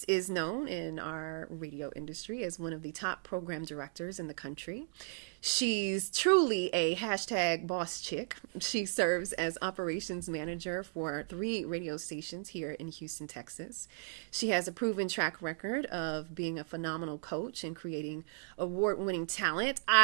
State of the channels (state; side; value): silent; left; digital silence